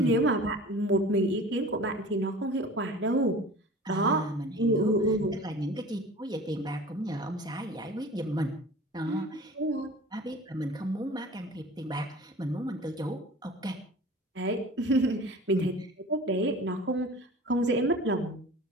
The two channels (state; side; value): normal; both; correlation 0.40